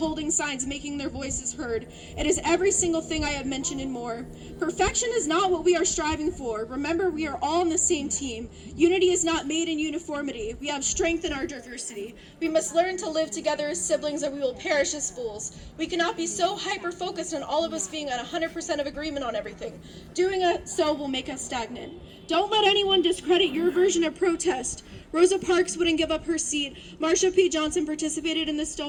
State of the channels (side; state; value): both; identical; correlation 1.00